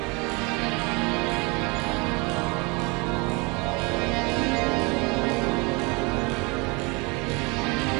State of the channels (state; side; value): quieter; left; 28.3 dB